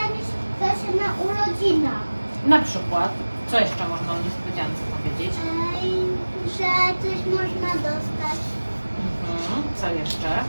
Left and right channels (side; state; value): both; inverted; correlation -1.00